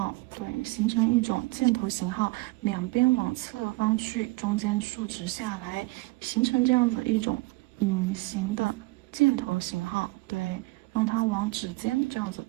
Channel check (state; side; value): quieter; left; 22.9 dB